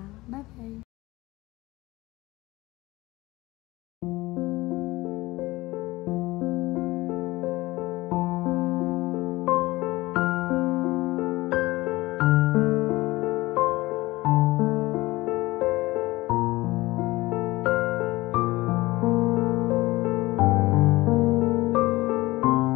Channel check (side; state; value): right; quieter; 19.8 dB